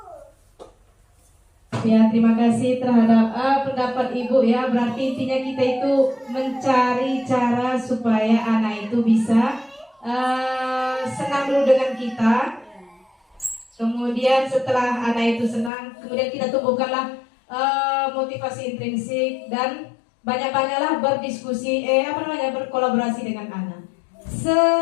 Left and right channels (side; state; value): right; drops out; at 15.7 s